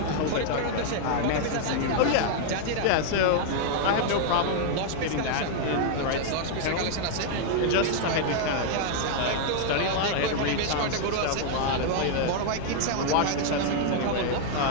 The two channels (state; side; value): different; both; correlation 0.00